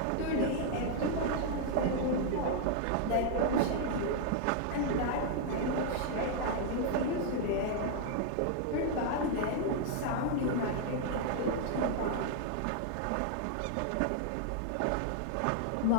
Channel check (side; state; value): both; different; correlation 0.00